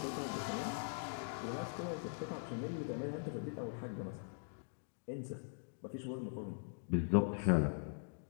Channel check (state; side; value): silent; right; digital silence